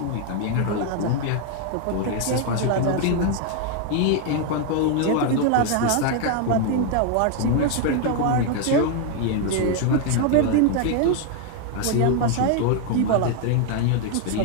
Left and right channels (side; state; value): both; different; correlation 0.00